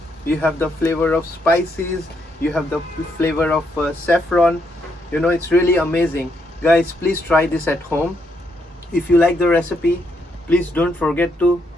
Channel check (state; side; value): normal; both; correlation 0.76